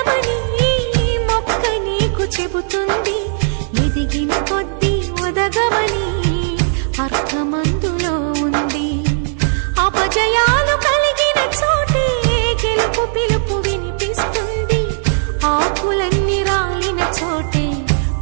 మొక్క నీకు చెబుతుంది, ఎదిగిన కొద్దీ ఒదగమని అర్థమందులో ఉంది. అపజయాలు కలిగిన చోటే గెలుపు పిలుపు వినిపిస్తుంది, ఆకులన్నీ రాలిన చోటే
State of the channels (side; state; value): left; silent; digital silence